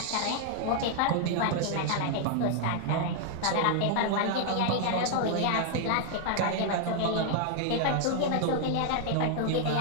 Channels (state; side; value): different; both; correlation 0.00